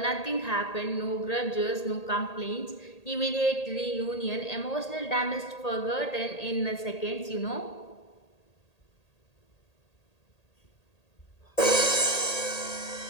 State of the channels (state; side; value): late; right; 1.8 ms